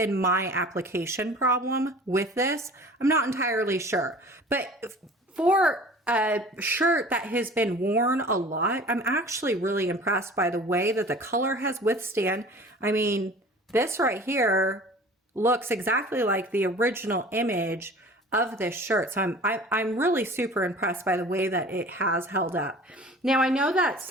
my application problem with this. I'm not entirely sure, but for a shirt that has been worn a lot, I'm actually really impressed by the way that the color has withstand. I mean, this right here looks exactly like the original image of this shirt. So I'm really super impressed by the way that it has held up. Now I know that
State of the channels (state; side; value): normal; both; correlation 0.44